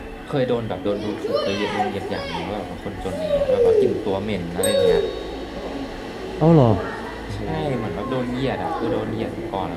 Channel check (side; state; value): both; identical; correlation 1.00